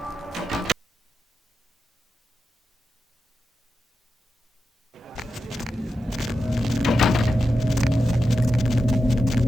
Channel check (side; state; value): both; normal; correlation 0.90